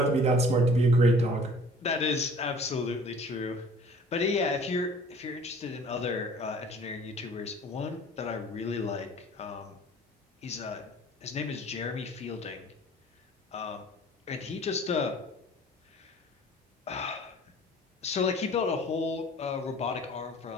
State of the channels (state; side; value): normal; both; correlation 0.50